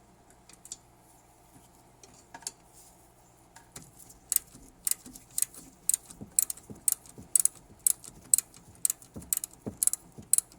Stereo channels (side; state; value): both; identical; correlation 1.00